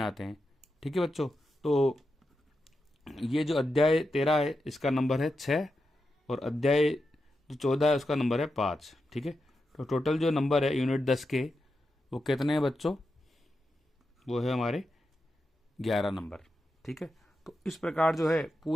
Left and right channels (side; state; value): both; normal; correlation 0.88